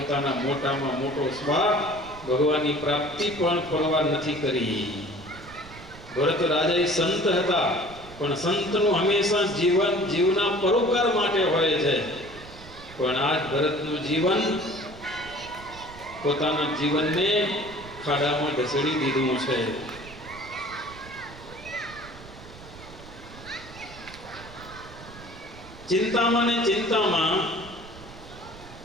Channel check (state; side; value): noise; right; rumble, 17 dB below the sound